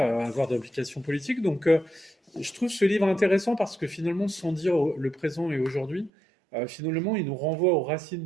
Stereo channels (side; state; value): left; drops out; at 6.1 s